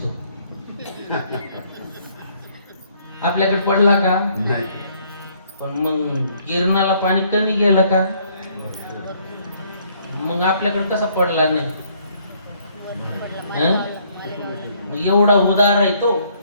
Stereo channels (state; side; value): inverted; both; correlation -0.65